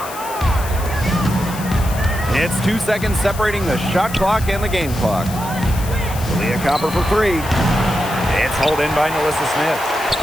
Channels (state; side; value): noise; left; hiss, 13 dB below the sound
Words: It's 2 seconds separating the shot clock and the game clock. Kalia Copper for three. It's hauled in by Melissa